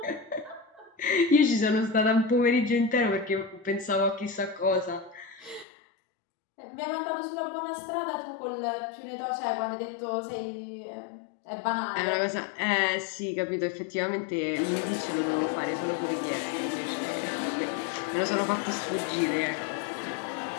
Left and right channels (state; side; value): drops out; right; at 5.7 s